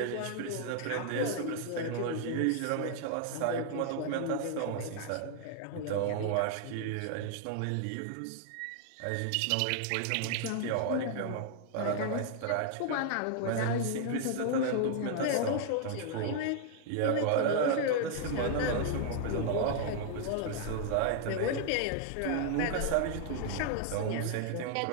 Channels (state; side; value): different; both; correlation 0.00